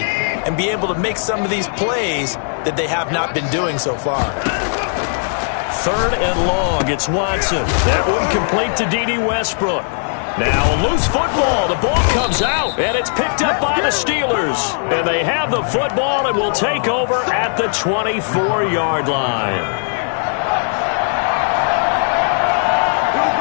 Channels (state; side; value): silent; right; digital silence